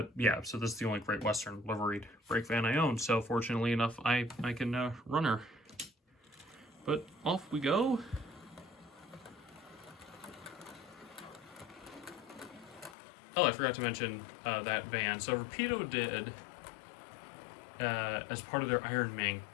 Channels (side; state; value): right; drops out; at 13.0 s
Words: yeah, so this is the only Great Western liveried brake van I own. So fortunately enough, I can run her. But off we go. Oh, I forgot to mention that van. So Rapido did, as part of their Iron Mink